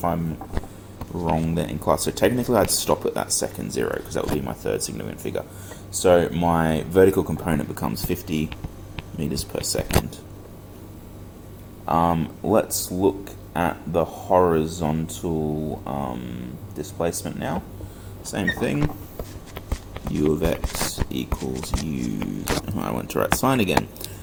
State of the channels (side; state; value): both; identical; correlation 1.00